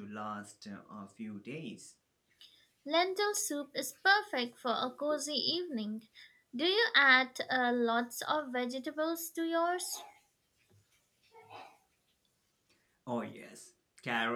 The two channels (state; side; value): identical; both; correlation 1.00